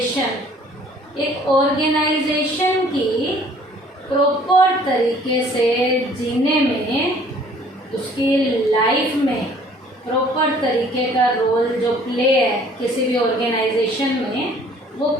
एक ऑर्गेनाइजेशन की प्रॉपर तरीके से जीने में, उसकी लाइफ में प्रॉपर तरीके का रोल जो प्ले है किसी भी ऑर्गेनाइजेशन में, वो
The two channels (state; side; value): normal; both; correlation 0.55